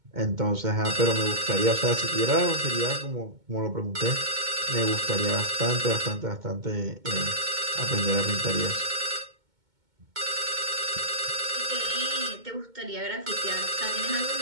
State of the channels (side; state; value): left; late; 2.2 ms